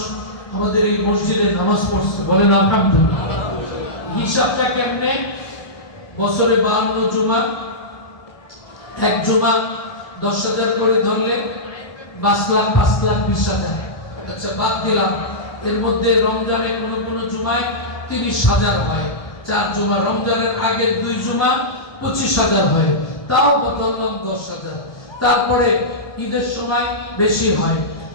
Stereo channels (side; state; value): right; late; 1.2 ms